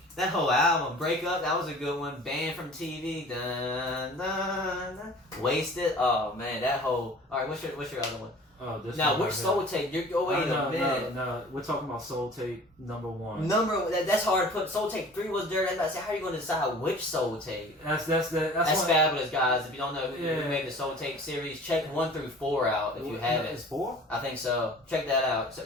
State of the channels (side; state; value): both; normal; correlation 0.45